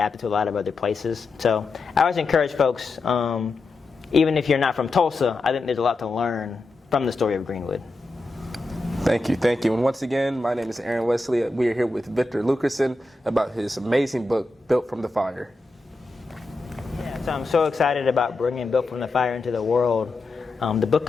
to a lot of other places. So I always encourage folks, even if you're not from Tulsa, I think there's a lot to learn from the story of Greenwood. Thank you. And once again, my name is Aaron Wesley. We are here with Victor Luckerson about his amazing book, Built from the Fire. Yeah, so I'm so excited about bringing Built from the Fire into the world. The book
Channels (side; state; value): right; quieter; 3.2 dB